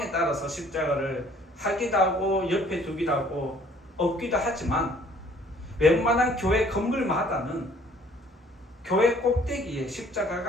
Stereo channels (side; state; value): both; normal; correlation 0.58